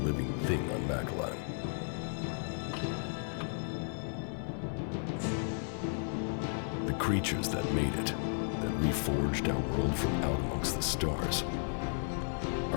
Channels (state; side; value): silent; right; 55 dB below the other